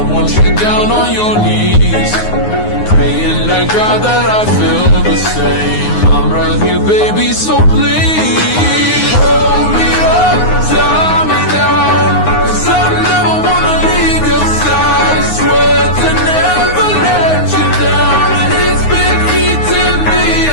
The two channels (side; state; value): right; late; 9.6 ms